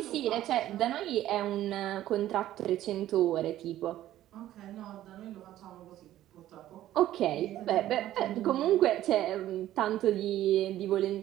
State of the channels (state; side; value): quieter; left; 13.4 dB